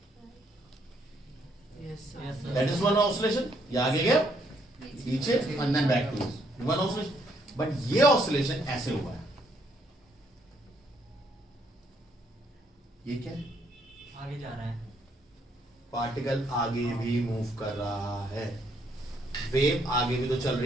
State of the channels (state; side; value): normal; both; correlation 0.71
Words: दैट इज वन ऑसिलेशन। ये आगे गया, पीछे, and then back to one oscillation. But ये ऑसिलेशन ऐसे हुआ है, ये क्या है, आगे जा रहा है, पार्टिकल आगे भी मूव कर रहा है, वेव आगे भी तो चल